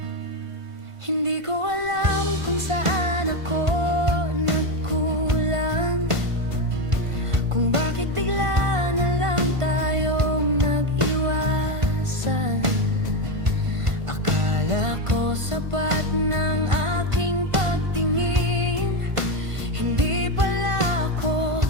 Hindi ko alam kung saan ako nagkulang, kung bakit bigla na lang tayong nag-iwasan. Akala ko sapat ng aking pagtingin, hindi pala ako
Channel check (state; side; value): late; left; 1.5 ms